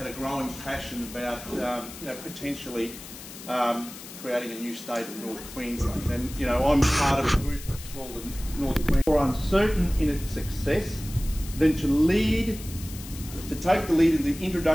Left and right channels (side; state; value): left; noise; hiss, 14 dB below the sound